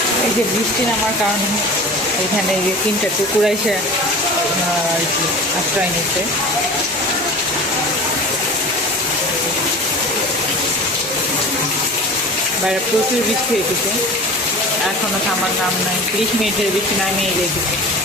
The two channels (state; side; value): normal; both; correlation 0.37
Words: এই যে বৃষ্টি নামার কারণে এখানে এই যে 3টা কুকুর এসে আর কি আশ্রয় নিচ্ছে। বাইরে প্রচুর বৃষ্টি হয়েছে, এখনো থামার নাম নাই, 30 মিনিটের বৃষ্টি নামিয়ে রেখেছে।